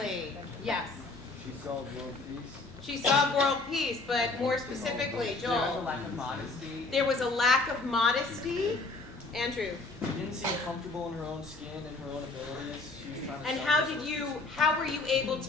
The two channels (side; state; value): right; quieter; 3.4 dB